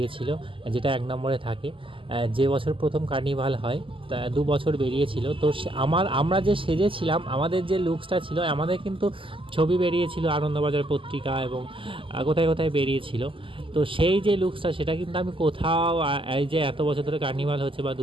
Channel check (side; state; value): left; late; 0.25 ms